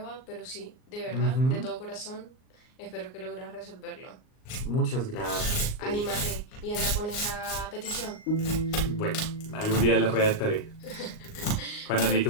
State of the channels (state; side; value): late; right; 38 ms